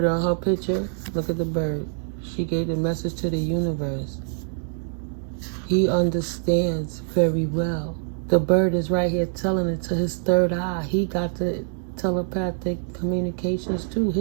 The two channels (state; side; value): silent; left; 58 dB below the other